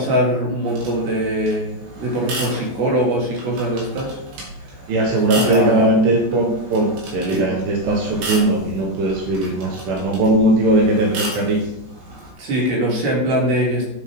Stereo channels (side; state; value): left; late; 14 ms